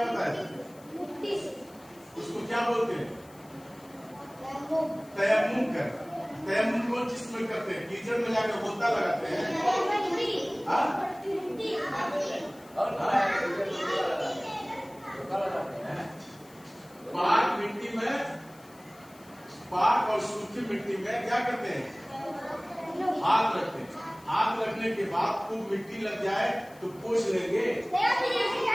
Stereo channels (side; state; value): left; noise; hiss, 25 dB below the sound